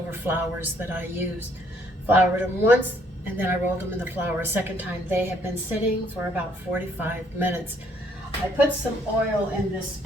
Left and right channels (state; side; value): normal; both; correlation 0.66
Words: flours that I used. Floured them once, and then I rolled them in the flour a second time. They have been sitting for about 45 minutes. I put some oil in this